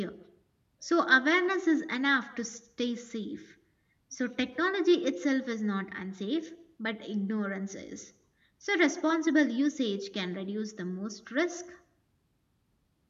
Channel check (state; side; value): identical; both; correlation 1.00